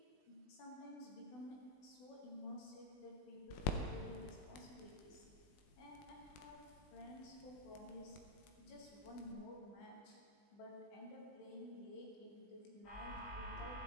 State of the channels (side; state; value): right; late; 20 ms